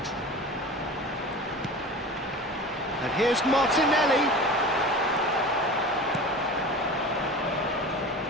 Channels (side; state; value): both; normal; correlation 0.34